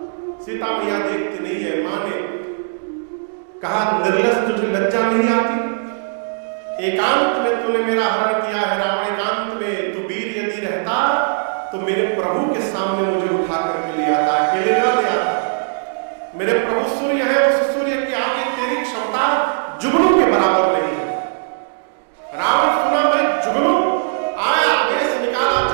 सीता मैया देखती नहीं है। मां ने कहा निर्लज तुझे लज्जा नहीं आती? एकांत में तूने मेरा हरण किया है रावण, एकांत में तू वीर यदि रहता तो मेरे प्रभु के सामने मुझे उठा करके ले आता, अकेले ना ले आता। मेरे प्रभु सूर्य है, उस सूर्य की आगे तेरी क्षमता जुगनू के बराबर नहीं है। रावण सुना मैं जुगनू, आया आवेश निकाला,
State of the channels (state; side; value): silent; left; digital silence